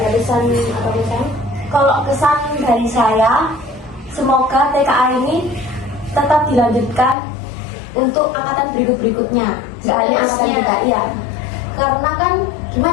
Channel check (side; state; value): right; drops out; at 7.2 s